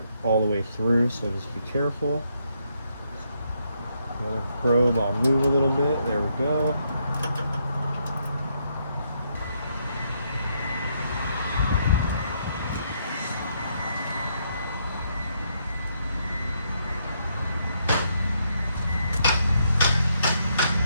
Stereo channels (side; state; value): both; inverted; correlation -0.75